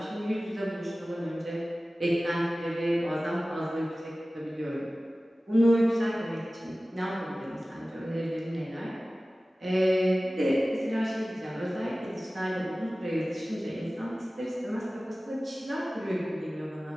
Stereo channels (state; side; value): normal; both; correlation 0.97